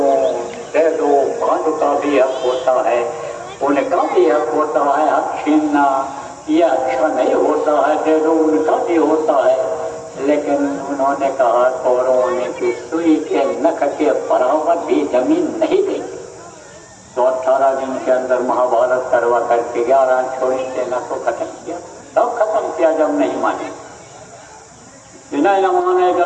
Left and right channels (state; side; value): identical; both; correlation 1.00